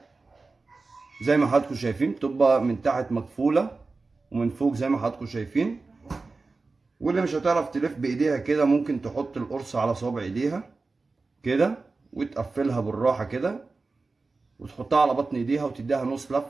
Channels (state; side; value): quieter; left; 3.8 dB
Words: زي ما حضراتكم شايفين، بتبقى من تحت مقفوله ومن فوق زي ما حضراتكم شايفين. واللي مش هتعرف تلف بايديها كده ممكن تحط القرصه على صوابع ايديها كده وتقفلها بالراحه كده وتحطها على بطن ايديها وتديها نص